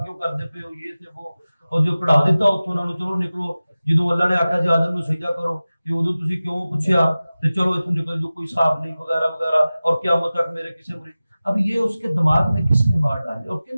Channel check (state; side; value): inverted; both; correlation -0.97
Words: کیوں کرتے پے ہو، یہ تے وہ، اور جو کڑا دیتا اتوں انہوں نے چلو نکلو. جدوں اللہ نے آخیا جی آدم نو سجدہ کرو کہ ادو تسی کیوں پوچھیا تے چلو اتوں نکل جو، کوئی حساب نہیں وغیرہ وغیرہ، اور قیامت تک میرے کسی مریض. اب یہ اس کے دماغ میں کس نے بات ڈالی اور